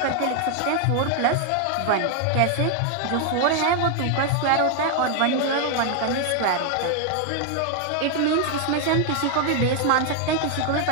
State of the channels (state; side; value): different; both; correlation 0.00